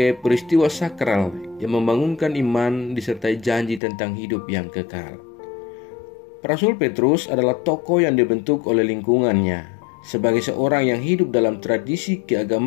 peristiwa sakral yang membangunkan iman disertai janji tentang hidup yang kekal. Rasul Petrus adalah tokoh yang dibentuk oleh lingkungannya. Sebagai seorang yang hidup dalam tradisi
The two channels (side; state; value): right; drops out; at 3.8 s